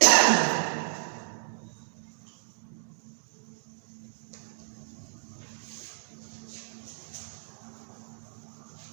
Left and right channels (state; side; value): silent; left; digital silence